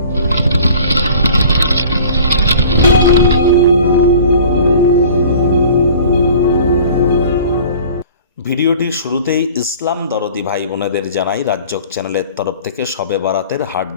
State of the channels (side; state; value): both; inverted; correlation -0.46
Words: ভিডিওটির শুরুতেই ইসলাম দরদি ভাই বোনেদের জানাই রাজ্যক চ্যানেলের তরফ থেকে শবে বরাতের